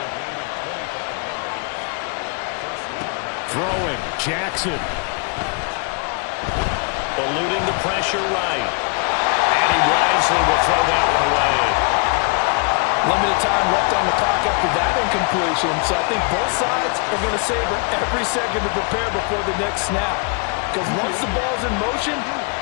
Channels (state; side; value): quieter; right; 36.1 dB